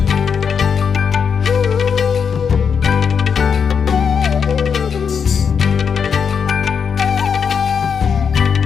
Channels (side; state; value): right; quieter; 6.6 dB